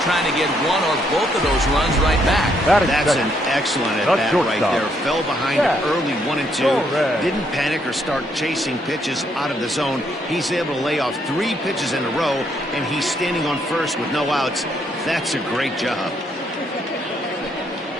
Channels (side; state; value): both; normal; correlation 0.73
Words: trying to get one or both of those runs right back. That's an excellent at bat right there. Fell behind early 1-2. Didn't panic or start chasing pitches out of the zone. He's able to lay off 3 pitches in a row, and he's standing on first with no outs. That's a great job.